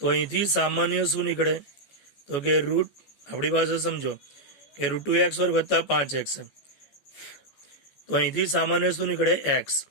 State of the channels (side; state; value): right; late; 14 ms